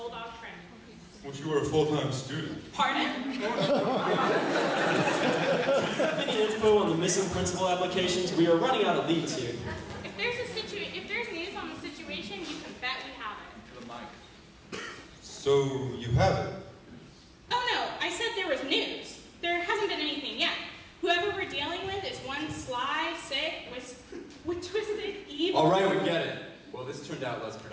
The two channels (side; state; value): both; identical; correlation 1.00